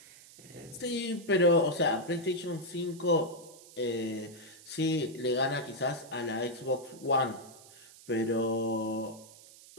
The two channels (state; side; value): noise; right; hiss, 20 dB below the sound